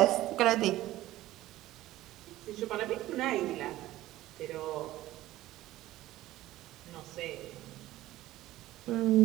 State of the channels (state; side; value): quieter; left; 15.6 dB